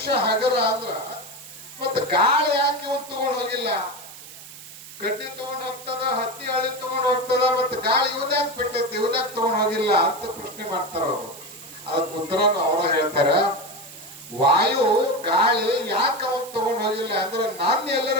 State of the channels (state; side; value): noise; right; hiss, 16 dB below the sound